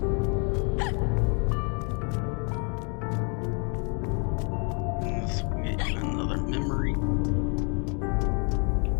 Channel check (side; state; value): right; quieter; 36.9 dB